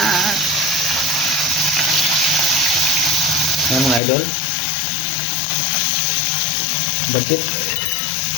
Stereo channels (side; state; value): right; drops out; at 4.0 s